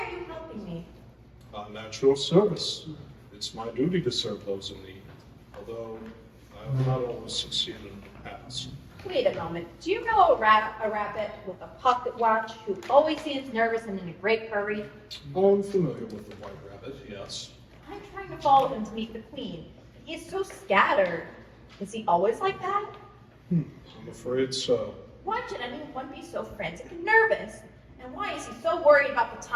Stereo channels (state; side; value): identical; both; correlation 1.00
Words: you helping me? I'm at your service. It's my duty to serve those in need, although I have not always succeeded in the past. Wait a moment. Do you know a rabbit with a pocket watch who always seems nervous and in a great hurry? I'm familiar with the white rabbit, yes. I'm trying to follow him to meet the queen. He is so scattered. Is he always like that? I'm afraid so. Why should anyone be so frantic and nervous? And why is he so worried about the